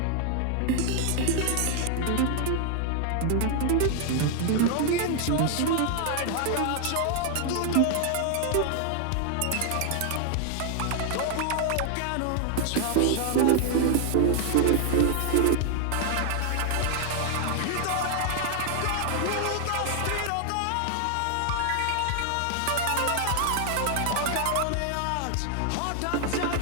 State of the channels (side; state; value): both; different; correlation 0.00